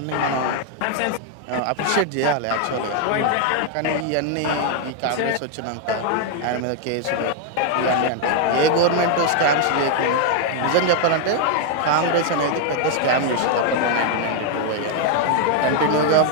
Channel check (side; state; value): both; different; correlation 0.00